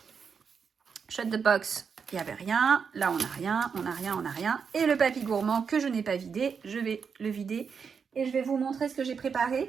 Shut the box. Il n'y avait rien. Là, on n'a rien. On n'a rien. On n'a rien. Et le papy gourmand que je n'ai pas vidé, je vais le vider Et je vais vous montrer ce que j'ai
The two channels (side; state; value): left; quieter; 6.2 dB